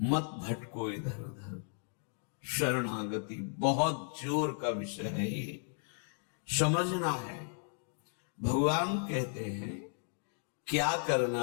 भटको इधर उधर। शरणागति बहुत जोर का विषय है, ये समझना है। भगवान कहते हैं क्या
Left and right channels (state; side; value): silent; right; 54 dB below the other